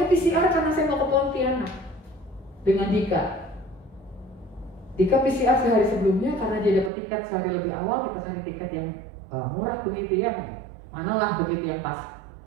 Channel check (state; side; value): drops out; left; at 6.9 s